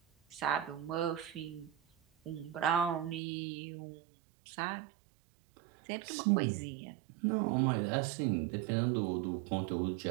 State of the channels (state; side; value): drops out; left; at 3.2 s